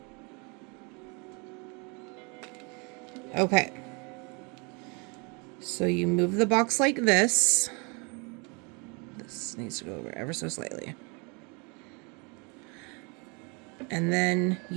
Okay. So you move the box like this. This needs to go over ever so slightly. And then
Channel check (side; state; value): left; quieter; 31.9 dB